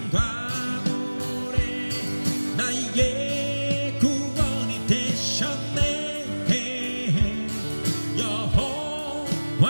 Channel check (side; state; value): both; inverted; correlation -1.00